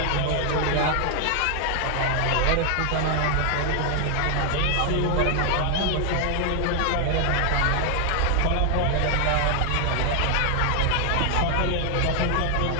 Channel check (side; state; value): both; different; correlation 0.00